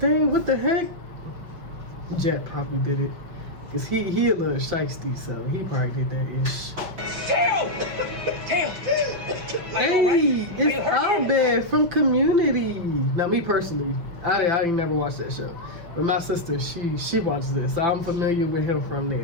what the heck? Jet probably did it. Cause he a little shiesty, so he probably did that ish. Tail! Tail! Hey, it's Airbender from Community. Now, me personally, I didn't never watch that show, but my sister, she watches this, so I'm familiar with him from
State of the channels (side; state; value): left; late; 5.7 ms